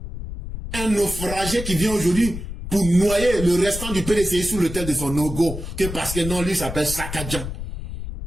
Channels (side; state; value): left; noise; rumble, 8 dB below the sound